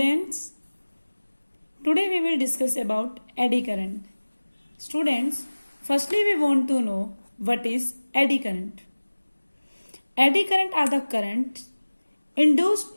today we will discuss about eddy current. Students, firstly we want to know what is eddy current. Eddy current are the currents induced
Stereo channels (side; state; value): both; inverted; correlation -1.00